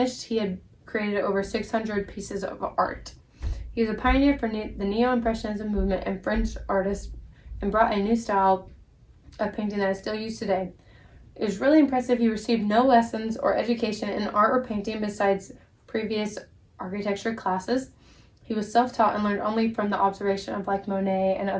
he had created over 600 pieces of art. He was a pioneer for the Neo-Impressionism movement and French artists, and brought a new style of painting that is still used today. It was really impressive. He received no lessons or education in art or painting besides previous architecture classes. He was self-taught and learned only from the observation of like Monet and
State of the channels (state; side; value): identical; both; correlation 1.00